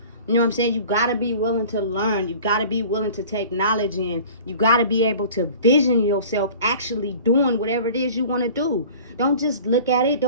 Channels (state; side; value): inverted; both; correlation -0.44